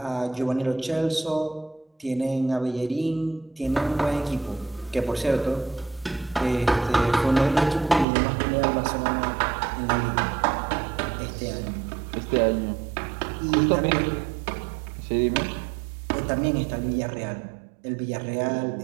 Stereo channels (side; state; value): left; drops out; at 8.1 s